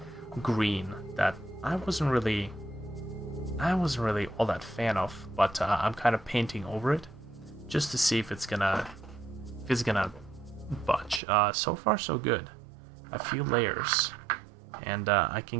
green that I wasn't really all that fan of, but I'm kind of painting over it just to see if it's gonna budge. So far so good. A few layers, and I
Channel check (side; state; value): left; drops out; at 11.2 s